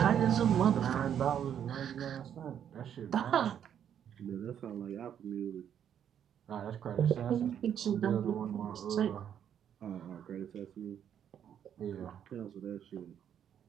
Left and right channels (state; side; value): quieter; left; 9.2 dB